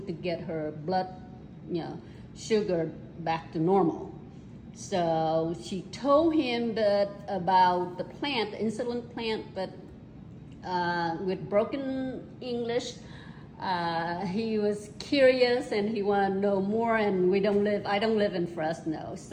to get her blood, sugar back to normal. So she told him that about the plant, the insulin plant, but with broken English, he was curious and he wanted to know more. And I don't live in Fresno,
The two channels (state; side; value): identical; both; correlation 1.00